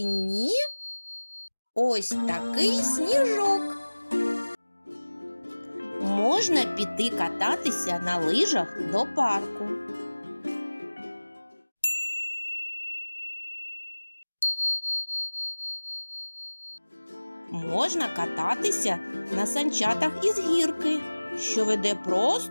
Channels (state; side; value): inverted; both; correlation -1.00